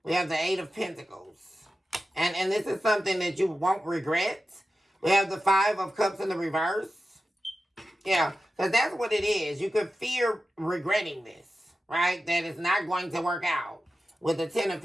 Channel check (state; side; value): normal; both; correlation 0.93